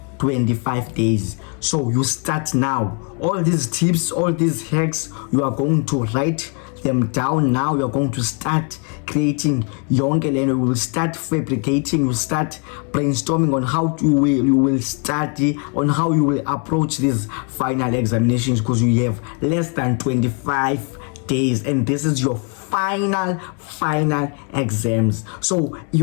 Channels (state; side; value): quieter; right; 37.9 dB